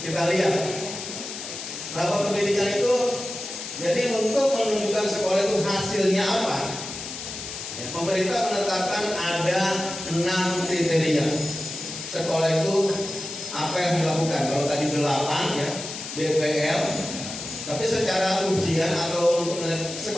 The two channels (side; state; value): left; noise; hiss, 8 dB below the sound